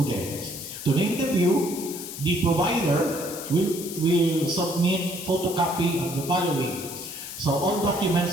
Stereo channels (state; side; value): noise; left; hiss, 10 dB below the sound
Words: To name the few, the provider will submit photocopy of the following. So all